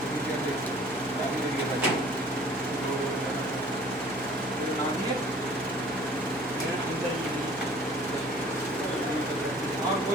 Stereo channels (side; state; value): right; noise; hum, 21 dB below the sound